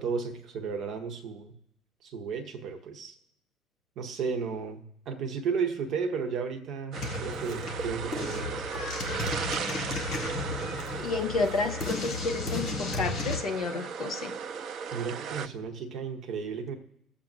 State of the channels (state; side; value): normal; both; correlation 0.41